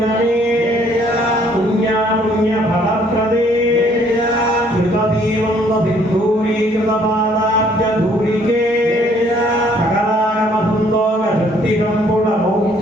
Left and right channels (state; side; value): normal; both; correlation 0.62